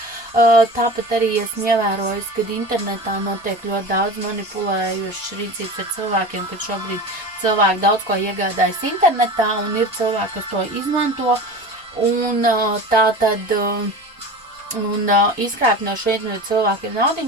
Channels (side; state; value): both; normal; correlation 0.33